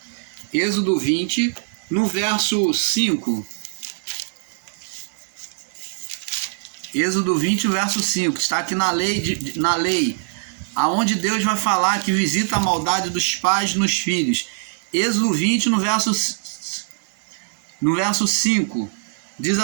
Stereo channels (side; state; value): left; silent; digital silence